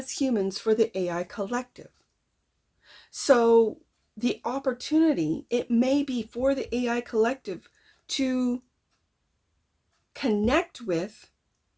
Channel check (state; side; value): identical; both; correlation 1.00